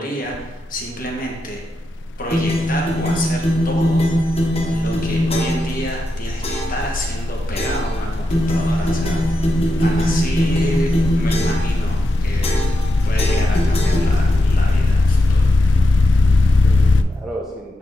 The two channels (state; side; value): normal; both; correlation 0.88